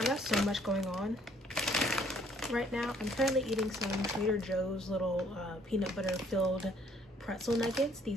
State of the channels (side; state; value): both; normal; correlation 0.63